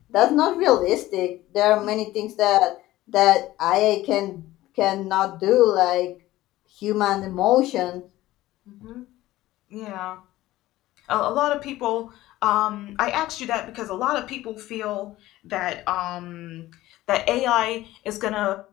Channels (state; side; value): quieter; right; 16.3 dB